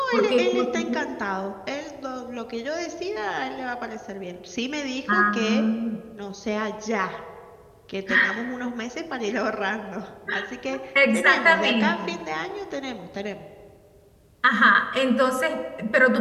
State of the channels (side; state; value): both; identical; correlation 1.00